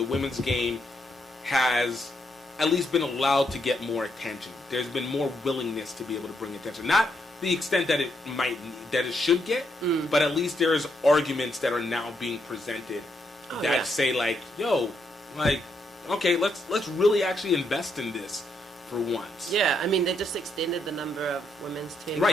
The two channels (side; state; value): both; normal; correlation 0.77